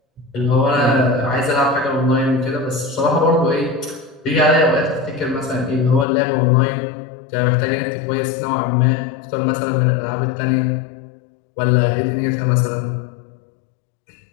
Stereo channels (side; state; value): right; drops out; at 6.1 s